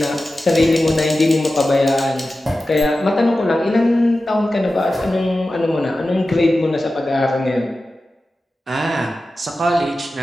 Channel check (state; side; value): normal; both; correlation 0.94